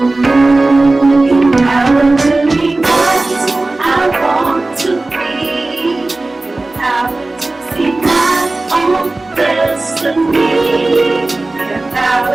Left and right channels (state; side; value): quieter; left; 3.0 dB